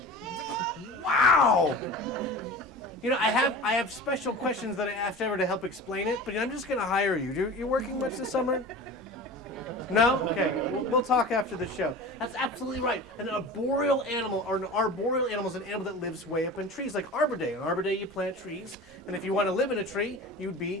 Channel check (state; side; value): normal; both; correlation 0.35